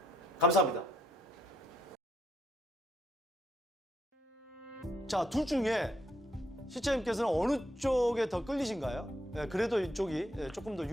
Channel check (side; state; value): both; normal; correlation 0.73